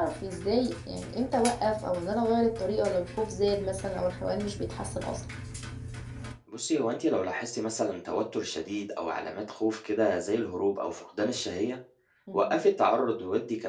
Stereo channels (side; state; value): both; identical; correlation 1.00